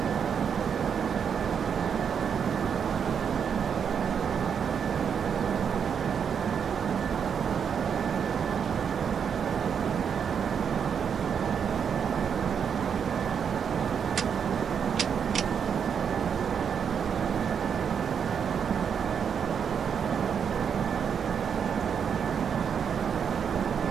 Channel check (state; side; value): quieter; left; 7.2 dB